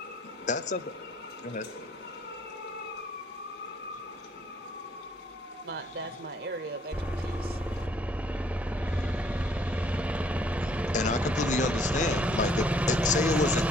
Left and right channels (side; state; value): both; normal; correlation 0.63